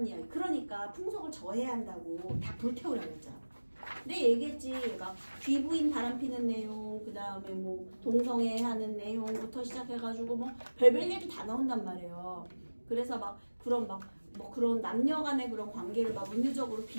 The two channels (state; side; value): inverted; both; correlation -1.00